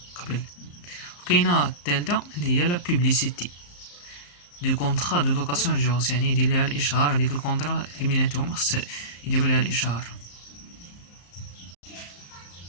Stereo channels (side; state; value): right; late; 34 ms